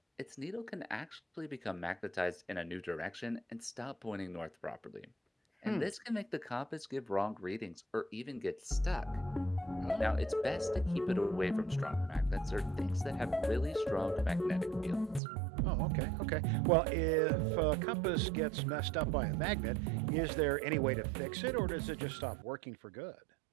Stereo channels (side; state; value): left; drops out; at 15.2 s